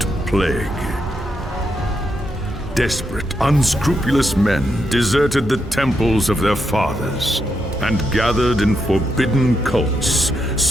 plague. Desperate, unscrupulous men deserted the temples of their fathers and gathered in forbidden cults,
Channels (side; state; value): both; normal; correlation 0.82